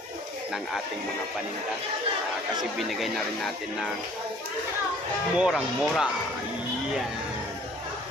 ng ating mga paninda. Kasi binigay na rin natin ng murang-mura. Ayan.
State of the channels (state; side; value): normal; both; correlation 0.55